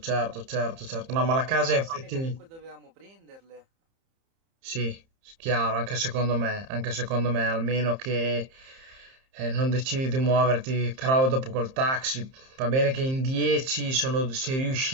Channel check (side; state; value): left; late; 30 ms